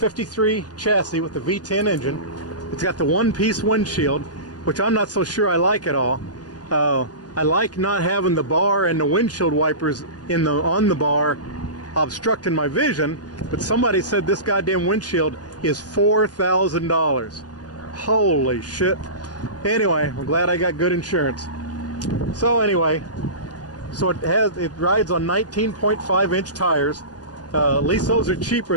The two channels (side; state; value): right; late; 0.69 ms